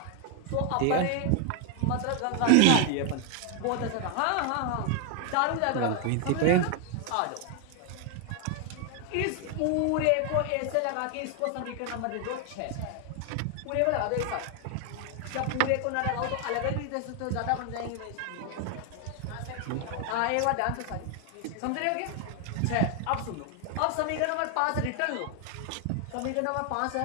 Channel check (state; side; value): different; both; correlation 0.01